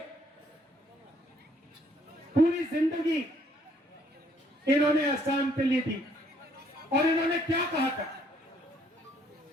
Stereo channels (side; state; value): both; normal; correlation 0.66